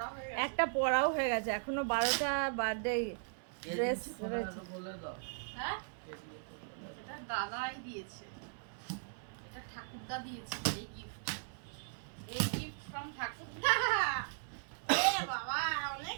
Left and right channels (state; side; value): silent; left; 52 dB below the other